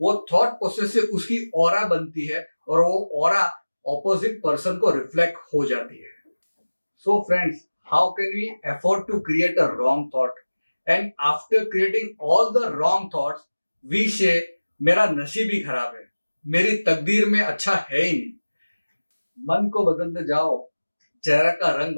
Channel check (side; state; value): both; inverted; correlation -1.00